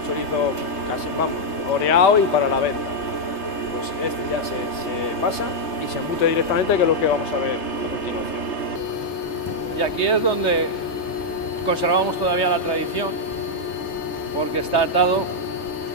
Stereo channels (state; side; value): late; right; 3.3 ms